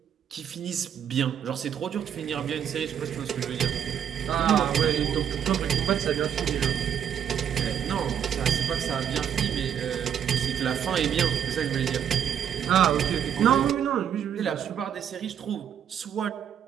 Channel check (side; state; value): left; quieter; 8.8 dB